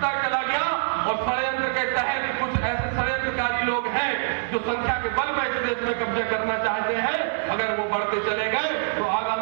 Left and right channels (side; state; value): left; silent; 62 dB below the other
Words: चला गया और षड्यंत्र के तहत कुछ ऐसे षड्यंत्रकारी लोग हैं जो संख्या के बल पर इस देश में कब्जा करना चाहते हैं, अगर वो बढ़ते चले गए तो